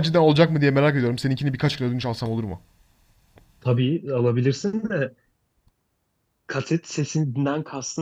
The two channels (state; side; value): identical; both; correlation 1.00